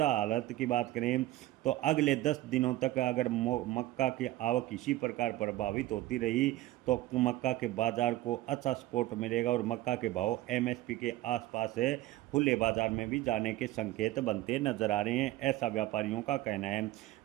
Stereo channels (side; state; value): left; quieter; 16.2 dB